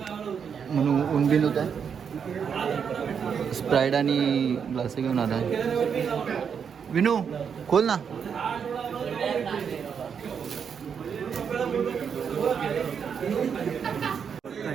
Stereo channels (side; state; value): left; quieter; 7.0 dB